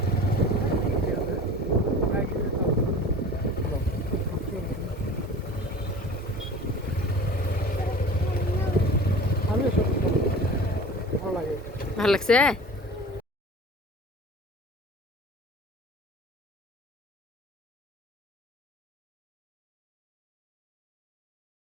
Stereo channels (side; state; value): both; normal; correlation 0.39